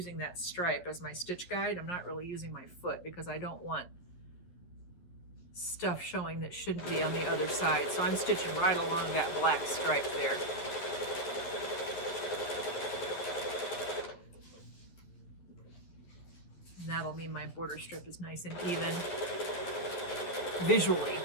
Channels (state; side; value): late; right; 11 ms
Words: that stripe as my stitch guide. I'm not really using my foot because I don't want stuff showing that shouldn't be on the other side. So I'm stitching right along that black stripe there. And that'll mean my border strip is nice and even visually